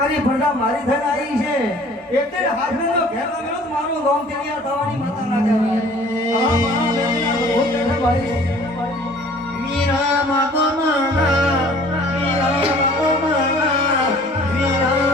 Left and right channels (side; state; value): both; normal; correlation 0.51